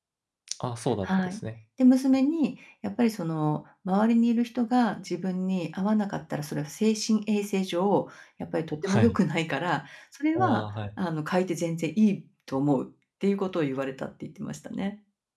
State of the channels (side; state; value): both; identical; correlation 1.00